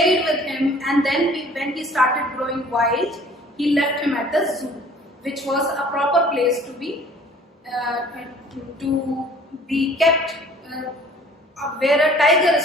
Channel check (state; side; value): normal; both; correlation 0.52